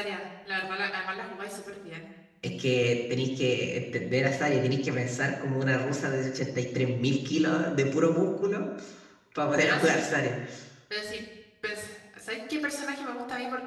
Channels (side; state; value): both; identical; correlation 1.00